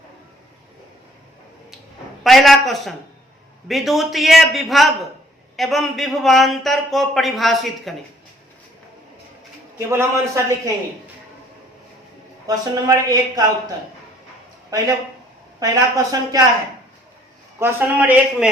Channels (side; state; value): both; normal; correlation 0.59